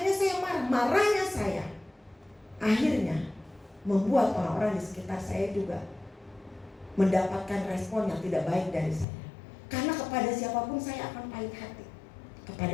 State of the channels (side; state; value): right; drops out; at 9.1 s